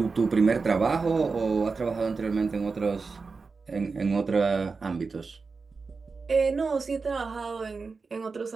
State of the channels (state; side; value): quieter; left; 4.5 dB